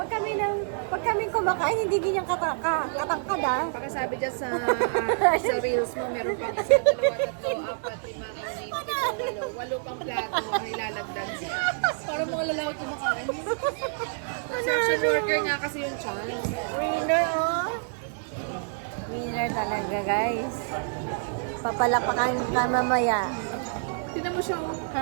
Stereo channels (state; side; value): silent; left; digital silence